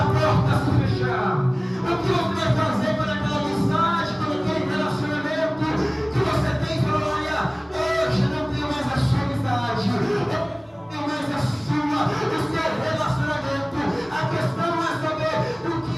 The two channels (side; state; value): both; identical; correlation 1.00